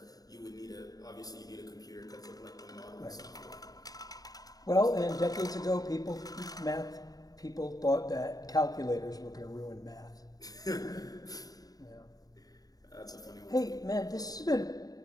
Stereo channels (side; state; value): right; late; 0.18 ms